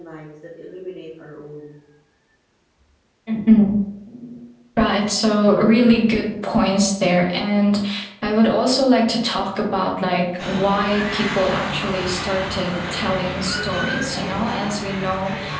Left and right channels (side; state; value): both; identical; correlation 1.00